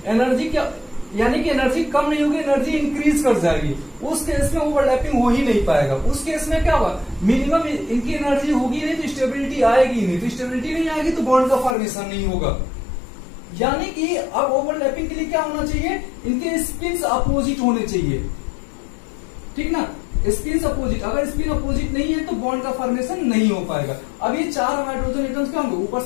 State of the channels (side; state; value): right; drops out; at 11.8 s